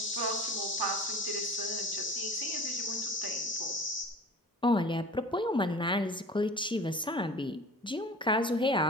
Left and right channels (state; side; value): normal; both; correlation 0.40